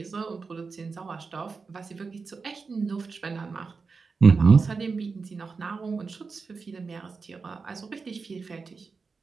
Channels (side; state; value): left; quieter; 4.7 dB